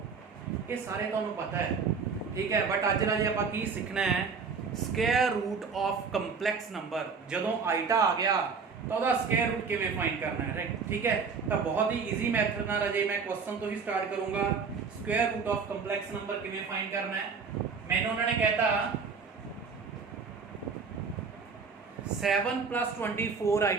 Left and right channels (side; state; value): left; quieter; 5.3 dB